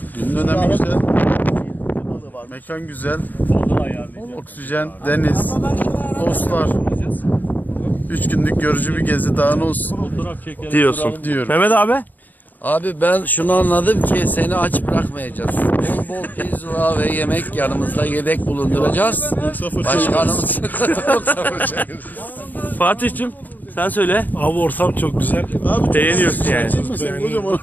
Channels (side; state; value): right; late; 0.084 ms